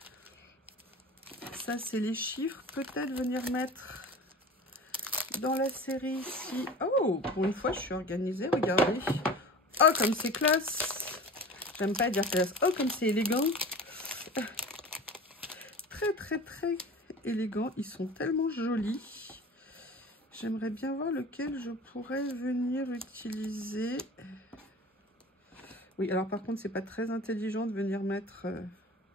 Ça, c'est les chiffres. Peut-être venir mettre dans la série ici. Oh, pour une fois, je suis organisée. Regardez. Oh, comme c'est classe. J'aime pas dire classe. Oh, comme c'est élégant. Très élégant. Ils sont tellement jolis. J'aimerais bien voir lequel je pourrais venir utiliser. Oui, alors par contre, c'est pas très intelligent de venir mettre...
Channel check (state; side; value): normal; both; correlation 0.37